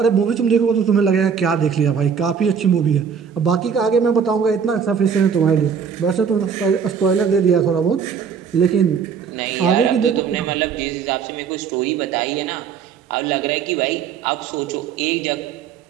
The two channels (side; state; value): left; quieter; 6.8 dB